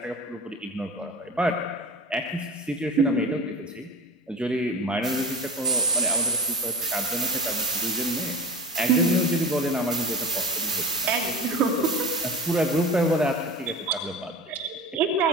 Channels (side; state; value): both; normal; correlation 0.34